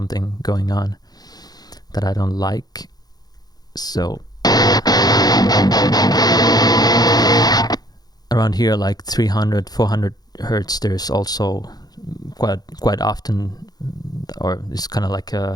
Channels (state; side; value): late; right; 0.19 ms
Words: going on that I don't like. So around here, like 300, 400 hertz, there's also quite often or it's kind of like